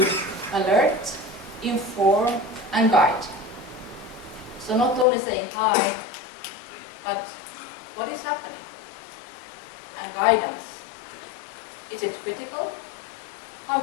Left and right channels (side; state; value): right; drops out; at 5.1 s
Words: alert, inform, and guide. So not only saying hi, but what is happening? And guidance. Is it critical? How